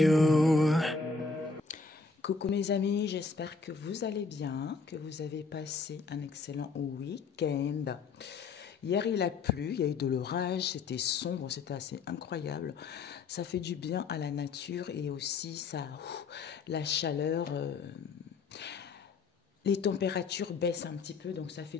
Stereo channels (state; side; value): quieter; right; 4.5 dB